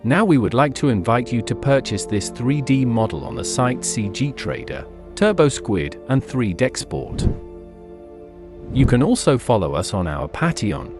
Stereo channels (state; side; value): identical; both; correlation 1.00